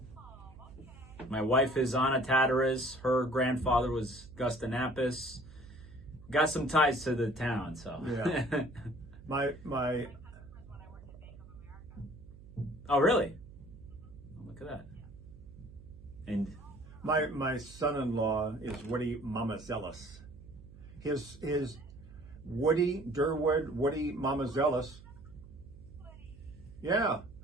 Oh, okay. my wife is Anna Tataris. Her grandfather was Gustinapis. Got some ties to the town. So Yeah. My My customers when I worked at Bank of America. Oh, really? Look at that. And my son-in-law is Woody Mamazelis. His Woody Mamazelis. Yeah.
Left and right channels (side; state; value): right; noise; hum, 18 dB below the sound